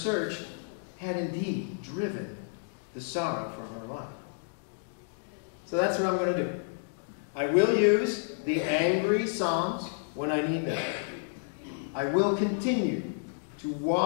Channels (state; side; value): silent; right; digital silence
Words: had indeed driven the sorrow from her life. So that's what I'm going to do. I will use the angry psalms when I need them. I will continue to